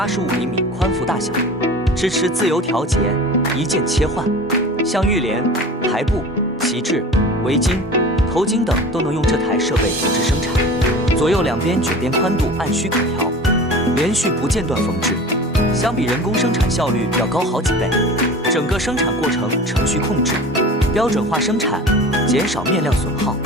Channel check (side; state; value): both; normal; correlation 0.38